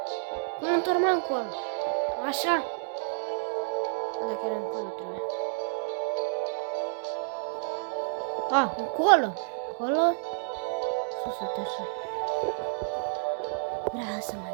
Cum mă întorc mă încolo? Așa? Dacă era încolo trebuie. A, încolo. Încolo. Sus, uite așa. Vreau să mă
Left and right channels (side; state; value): left; silent; digital silence